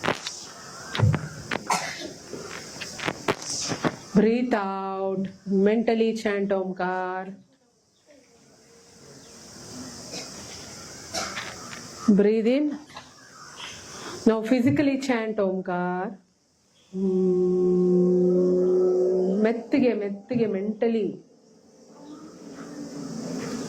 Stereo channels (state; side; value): identical; both; correlation 1.00